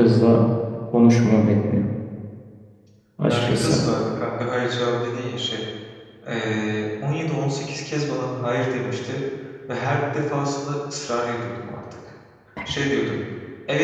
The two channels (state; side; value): identical; both; correlation 1.00